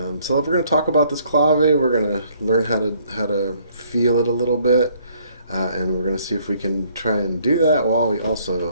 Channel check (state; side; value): inverted; both; correlation -0.64